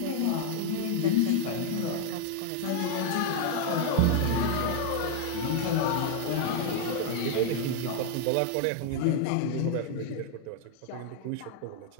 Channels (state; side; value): different; both; correlation 0.00